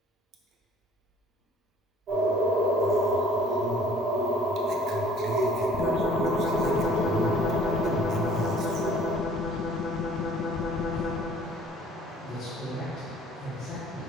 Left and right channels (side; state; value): both; normal; correlation 0.53